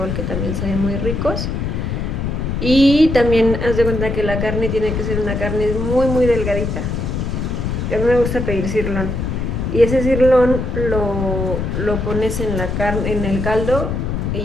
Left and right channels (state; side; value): noise; left; rumble, 2 dB below the sound